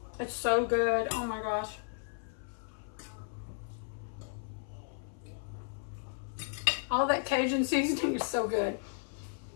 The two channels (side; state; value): right; silent; 55 dB below the other